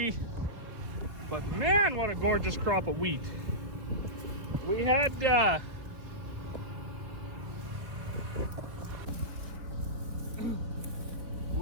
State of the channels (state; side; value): late; left; 4.1 ms